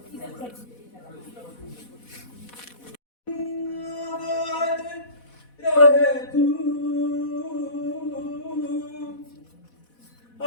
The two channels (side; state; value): right; late; 4.1 ms